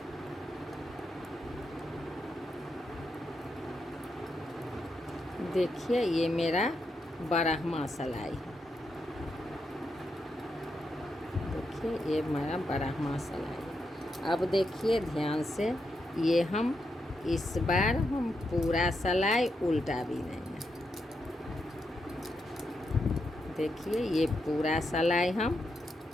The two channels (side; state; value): both; normal; correlation 0.83